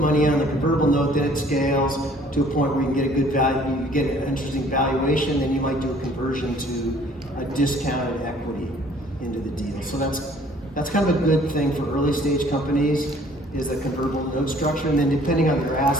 on the convertible note, then it scales to a point where you can get a good value, you get an interesting valuation, then you might do a conversion to a discounted equity into the deal. So that's kind of a good thing for early stage companies, is the convertible note structure. And then depending on their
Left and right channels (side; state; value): both; normal; correlation 0.56